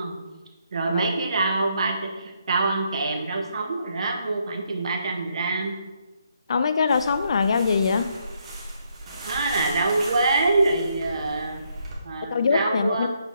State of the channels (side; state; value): both; inverted; correlation -0.74